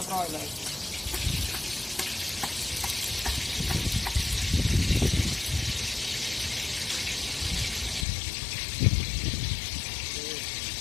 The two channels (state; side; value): drops out; right; at 8.1 s